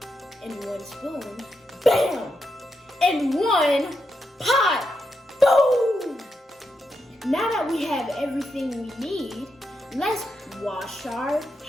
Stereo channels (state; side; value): normal; both; correlation 0.84